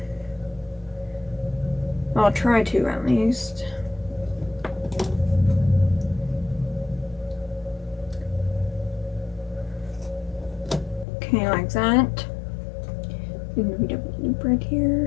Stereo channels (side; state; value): right; drops out; at 11.1 s